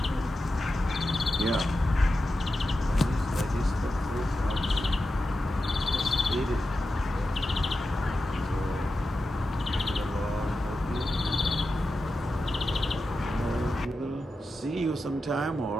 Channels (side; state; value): both; normal; correlation 0.91